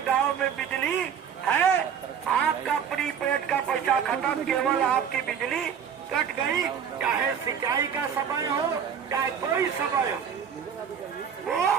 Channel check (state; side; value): quieter; left; 7.8 dB